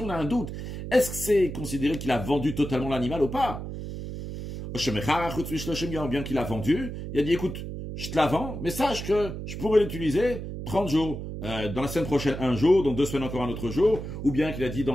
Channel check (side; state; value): right; noise; hum, 7 dB below the sound